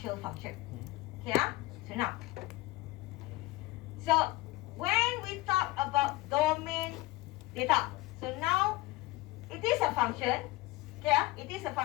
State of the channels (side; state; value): right; quieter; 19.8 dB